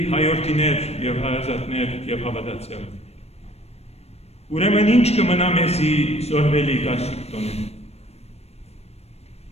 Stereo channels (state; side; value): late; right; 0.31 ms